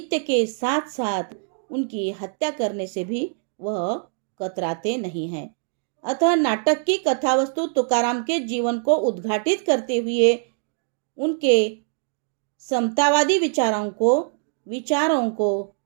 के साथ साथ उनकी हत्या करने से भी वह कतराते नहीं हैं। अतः नाटक की कथावस्तु तुकाराम के जीवन को उद्घाटित करते हुए उनके समतावादी विचारों को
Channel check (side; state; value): left; silent; digital silence